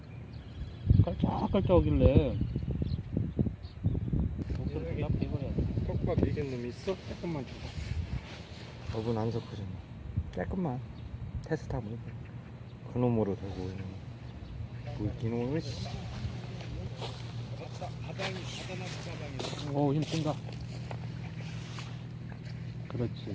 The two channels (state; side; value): identical; both; correlation 1.00